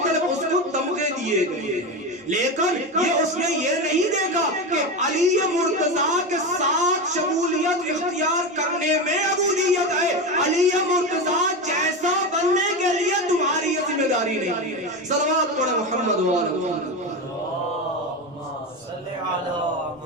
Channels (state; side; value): normal; both; correlation 0.19